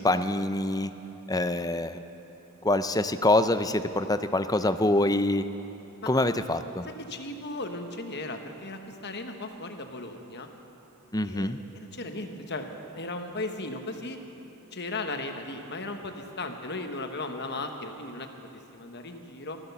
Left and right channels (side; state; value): both; normal; correlation 0.54